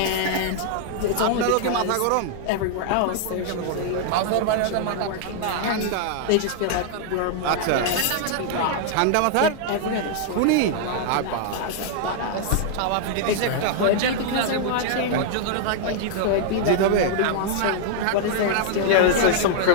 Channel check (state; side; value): different; both; correlation -0.01